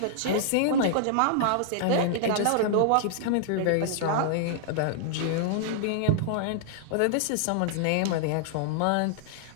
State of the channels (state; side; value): different; both; correlation -0.01